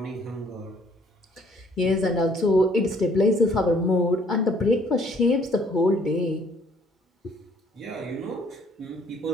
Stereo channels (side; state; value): both; normal; correlation 0.61